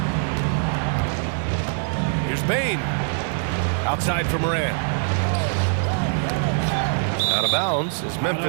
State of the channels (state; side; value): silent; left; digital silence